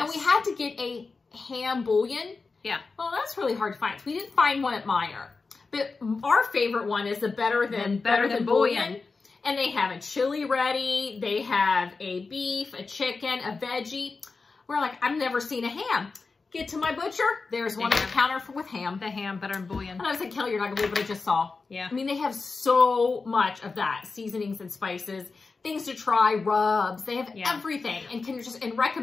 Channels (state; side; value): quieter; right; 4.2 dB